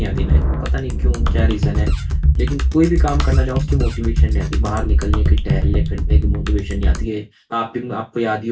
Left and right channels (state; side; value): identical; both; correlation 1.00